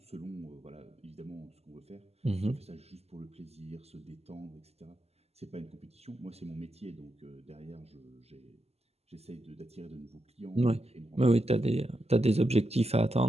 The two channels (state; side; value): late; left; 0.30 ms